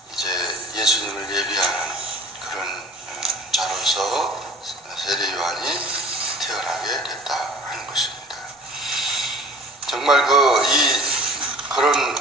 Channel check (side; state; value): both; normal; correlation 0.45